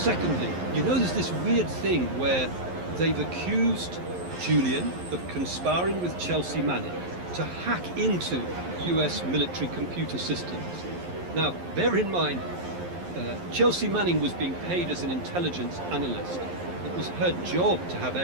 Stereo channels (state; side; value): late; left; 11 ms